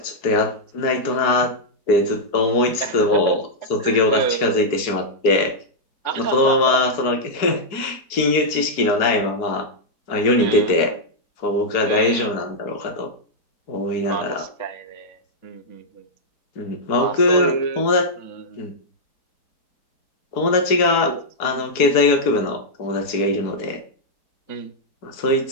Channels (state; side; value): late; right; 4.6 ms